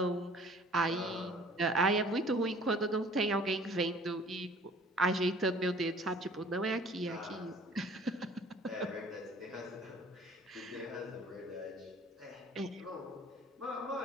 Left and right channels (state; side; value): normal; both; correlation 0.51